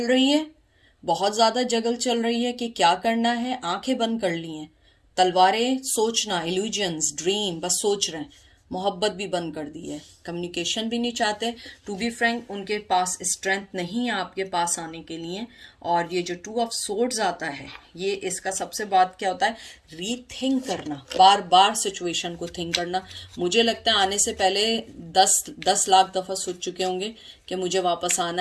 रही है, बहुत ज़्यादा जगल चल रही है कि क्या करना है। आंखें बंद कर ली हैं, तलवारें, सोचना, इल्यूजन्स, ड्रीम, बस सोच रहे हैं। मोहब्बत भी बंद कर दी है, कम्युनिकेशन भी नहीं चाहते। टू बी फ्रैंक, उनके पास स्ट्रेंथ नहीं है आपके पास आने के लिए। और ये जो 2 ऑफ सोर्ड्स आता है, ये इसका सबसे बात क्या होता है, रीथिंक करना, बार बार सिचुएशन को थिंक करना। मुझे लगता है आने से पहले 10 लाख दफ़ा सोच चुके होंगे कि मुझे वापस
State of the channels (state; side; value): identical; both; correlation 1.00